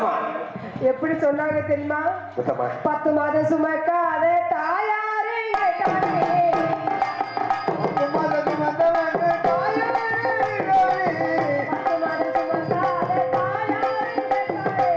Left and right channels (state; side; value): identical; both; correlation 1.00